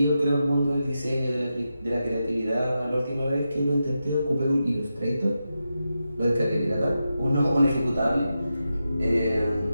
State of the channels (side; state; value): both; inverted; correlation -0.89